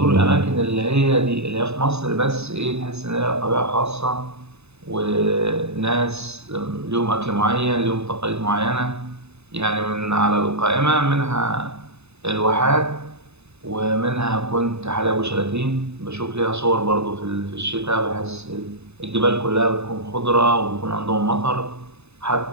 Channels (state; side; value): late; left; 0.80 ms